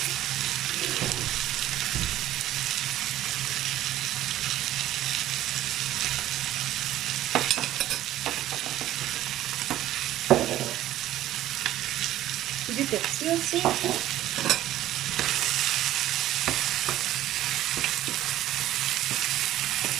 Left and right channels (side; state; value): left; quieter; 13.7 dB